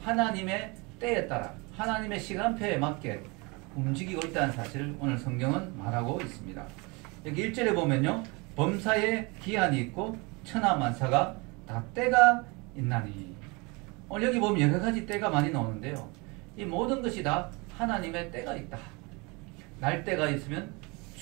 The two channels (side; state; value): left; quieter; 27.9 dB